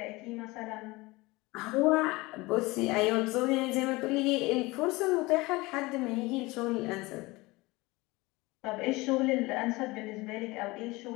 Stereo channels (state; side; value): quieter; right; 22.2 dB